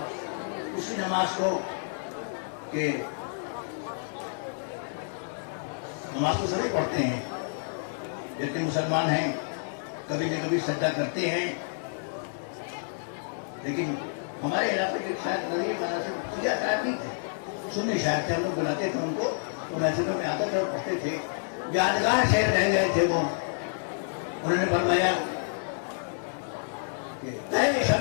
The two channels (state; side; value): silent; right; digital silence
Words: اسی نماز کو کہ نماز کو سبھی پڑھتے ہیں، جتنے مسلمان ہیں کبھی نہ کبھی سجدہ کرتے ہیں، لیکن ہمارے علاقے کے شاید نظیر مانا سے سیاہ شاعر نہیں تھے، سنی شاعر تھے، ہم لوگ بلاتے تھے ان کو، تو محفلوں میں آتے تھے اور پڑھتے تھے، یادگار شعر رہ گئے تھے وہ، انہوں نے فرمایا کہ اے